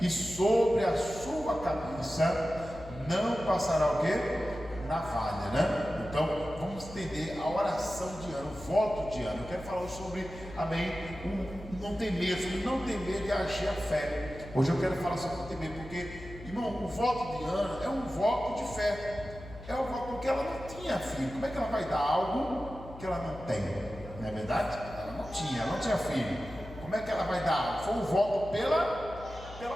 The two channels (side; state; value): left; noise; hum, 15 dB below the sound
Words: e sobre a sua cabeça não passará o quê? Navalha, né? Então, vamos entender a oração de Ana, o voto de Ana. Eu quero falar sobre, amém, não temer, sobre não temer de agir a fé. Hoje eu quero falar sobre não temer, porque, irmão, o voto de Ana é um voto de fé. É um voto porque ela não tinha filho. Como é que ela vai dar algo que ela não tem? Não é verdade? Ela não tinha filho. Como é que ela vai dar algo? Foi um voto pela